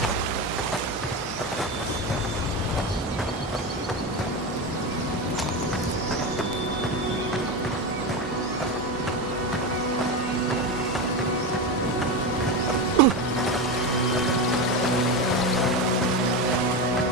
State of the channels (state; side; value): normal; both; correlation 0.18